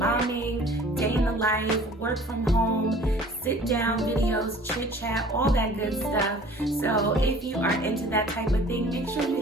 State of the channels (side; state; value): both; normal; correlation 0.49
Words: day in the life, work from home, sit down videos, chit chat, all that good stuff. So if you are into that type of thing, make sure